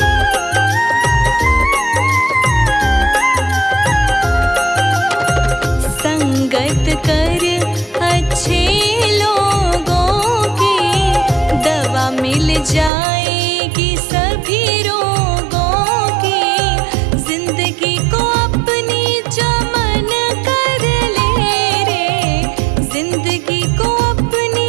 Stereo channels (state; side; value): drops out; left; at 12.9 s